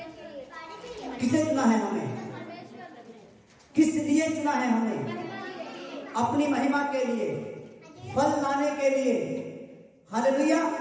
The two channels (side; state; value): both; identical; correlation 1.00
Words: किसने चुना है हमें? किस लिए चुना है हमें? अपनी महिमा के लिए, फल लाने के लिए। हालेलुया।